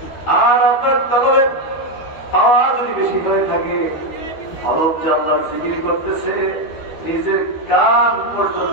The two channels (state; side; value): late; right; 13 ms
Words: আর আপনার তলবে পাওয়ার যদি বেশি হয়ে থাকে, অলপ জানলার জিকির করতেছে, নিজের কান